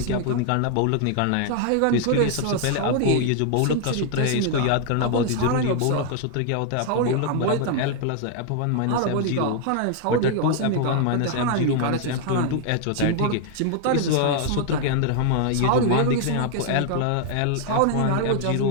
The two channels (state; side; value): different; both; correlation 0.00